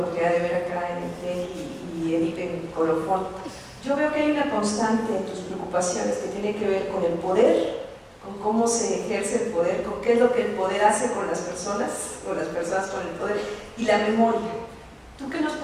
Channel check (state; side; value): identical; both; correlation 1.00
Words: de ver acá en el TEC, y Edith en Colofón, yo veo que hay una constante en tus preocupaciones que tiene que ver con el poder, con cómo se ejerce el poder, con qué es lo que el poder hace con las personas, o las personas con el poder, y la memoria. ¿Tú qué nos